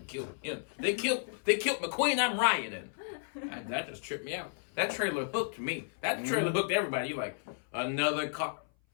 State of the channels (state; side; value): silent; right; 56 dB below the other